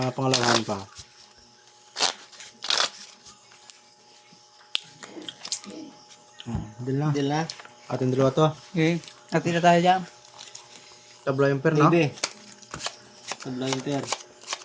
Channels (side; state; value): both; identical; correlation 1.00